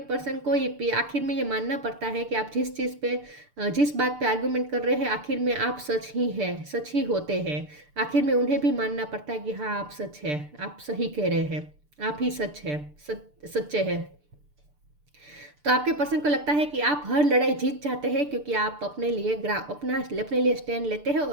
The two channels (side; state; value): left; late; 6.8 ms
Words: पर्सन को ये आखिर में ये मानना पड़ता है कि आप जिस चीज़ पे जिस बात पे आर्गुमेंट कर रहे हैं आखिर में आप सच ही हैं, सच ही होते हैं। आखिर में उन्हें भी मानना पड़ता है कि हाँ आप सच है, आप सही कह रहे हैं, आप ही सच है, सच्चे हैं। तो आपके पर्सन को लगता है कि आप हर लड़ाई जीत जाते हैं क्योंकि आप अपने लिए स्टैंड लेते हैं,